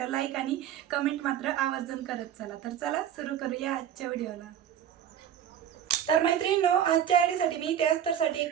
लाईक आणि कमेंट मात्र आवर्जून करत चला। तर चला सुरू करूया आजच्या व्हिडिओला। तर मैत्रिणींनो, आजच्या आयडीसाठी मी त्या अस्तरसाठी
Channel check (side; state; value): left; quieter; 9.7 dB